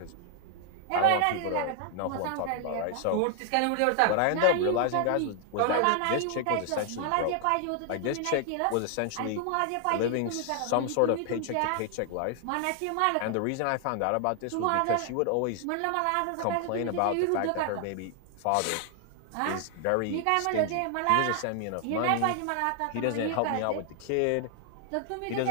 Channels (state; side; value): different; both; correlation 0.00